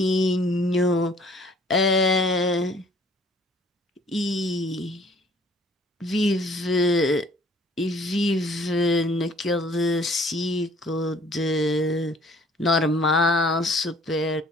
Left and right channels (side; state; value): both; normal; correlation 0.57